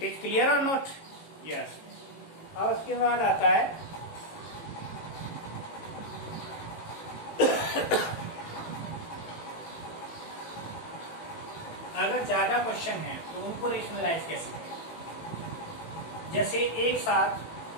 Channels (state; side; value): late; right; 18 ms